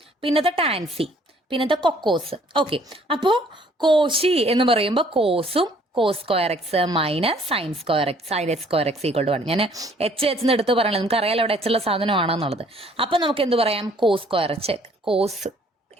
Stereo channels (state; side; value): normal; both; correlation 0.60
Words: പിന്നത്തെ ടാൻസി, പിന്നത്തെ കൊക്കോസ്. ഓക്കെ, അപ്പോൾ കോശി എന്ന് പറയുമ്പോൾ കോസും cos square x minus sine square x sine h square x equal to 1. ഞാൻ എച്ച് എന്ന് എടുത്ത് പറയണത് നമുക്ക് അറിയാലോ അവിടെ എച്ച് ഉള്ള സാധനമാണെന്നുള്ളത്. അപ്പം നമുക്ക് എന്ത് പറയാം, cos square